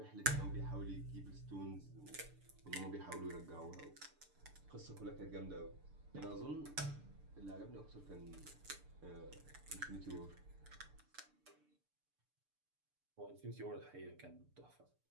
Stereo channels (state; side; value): late; left; 6.8 ms